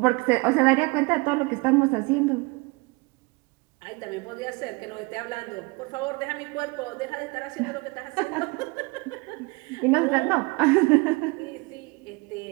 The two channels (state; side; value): quieter; left; 27.1 dB